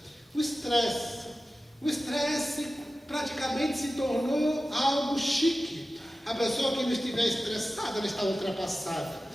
O estresse praticamente se tornou algo chique. A pessoa que não estiver estressada, ela está ultrapassada.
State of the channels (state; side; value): normal; both; correlation 0.95